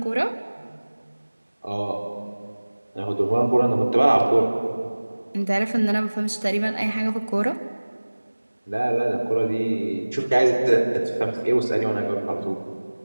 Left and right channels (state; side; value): inverted; both; correlation -1.00